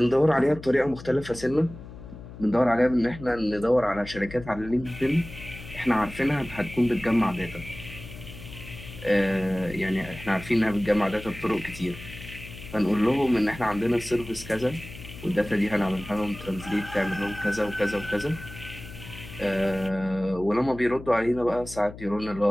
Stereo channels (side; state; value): left; noise; hum, 14 dB below the sound